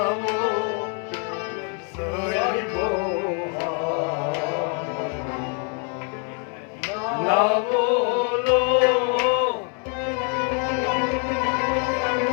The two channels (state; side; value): quieter; right; 39.7 dB